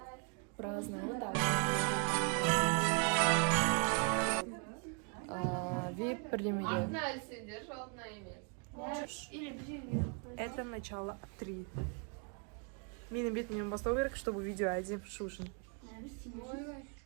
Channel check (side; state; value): left; quieter; 38.4 dB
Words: Празднуем. Вот так. VIP премьер. Это начало 3. Менің бетімнен бастау керек, чтобы видео әдеп шушын.